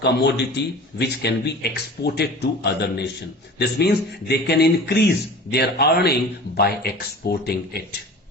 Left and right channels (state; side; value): normal; both; correlation 0.39